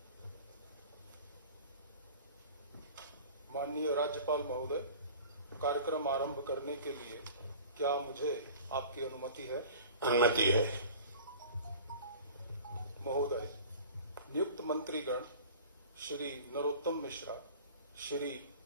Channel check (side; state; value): both; inverted; correlation -0.43